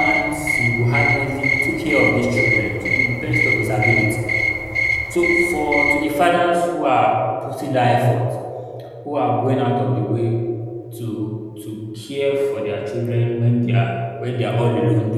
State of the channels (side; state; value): both; identical; correlation 1.00